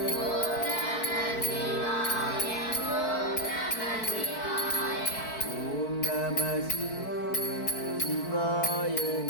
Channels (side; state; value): right; late; 4.6 ms